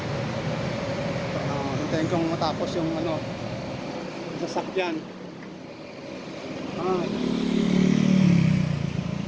Hintayin kong matapos yung ano, sasakyan.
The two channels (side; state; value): both; identical; correlation 1.00